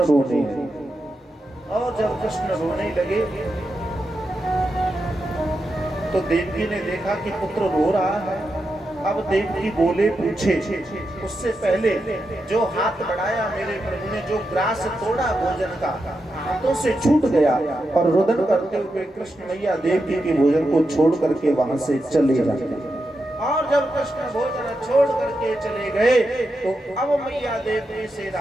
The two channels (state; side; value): normal; both; correlation 0.87